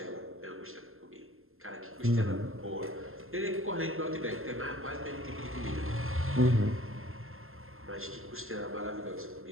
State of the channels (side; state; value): left; late; 0.61 ms